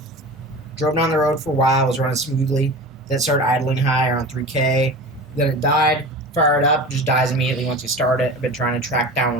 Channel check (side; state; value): both; normal; correlation 0.33